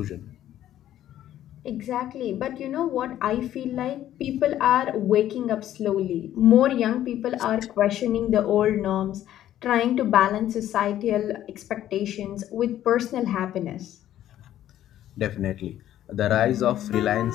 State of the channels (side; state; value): right; quieter; 12.2 dB